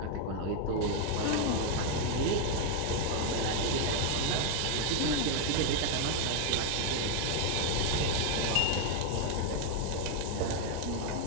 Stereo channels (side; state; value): both; different; correlation 0.01